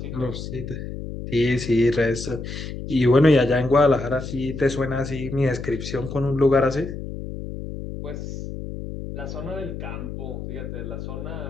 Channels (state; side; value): noise; left; hum, 8 dB below the sound